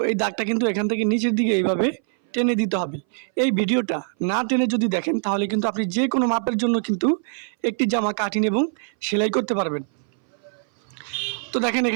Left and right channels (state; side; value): silent; left; 60 dB below the other